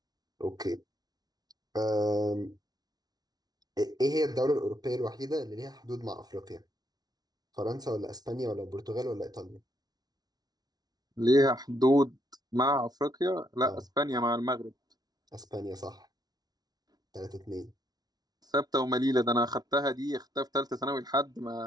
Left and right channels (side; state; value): left; late; 0.19 ms